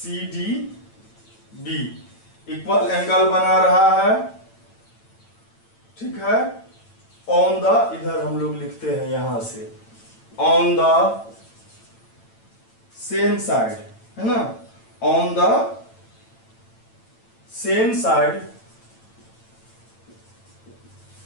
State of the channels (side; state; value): right; late; 8.9 ms